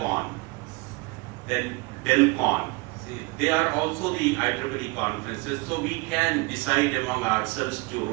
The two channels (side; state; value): left; quieter; 26.2 dB